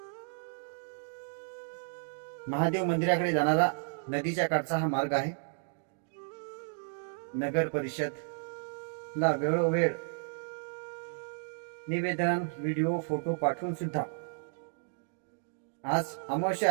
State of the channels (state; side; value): silent; left; digital silence